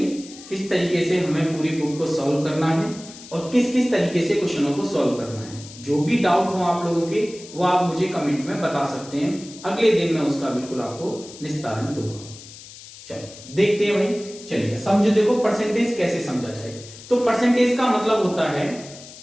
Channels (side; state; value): left; noise; hiss, 17 dB below the sound